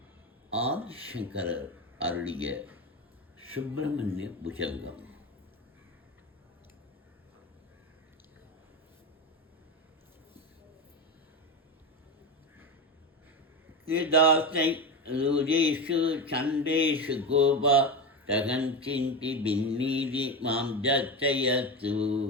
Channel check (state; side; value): normal; both; correlation 0.18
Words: ஆதிசங்கரர் அருளிய சுப்பிரமணிய புஜங்கம். கிருதாசை ருஜேஷு சண்டேஷு கோபா தகஞ்சிந்தி பின்னீதி மாம் ஜச்சயத்து